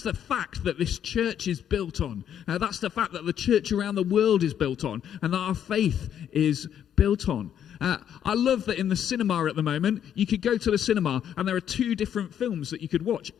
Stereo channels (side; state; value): right; quieter; 9.5 dB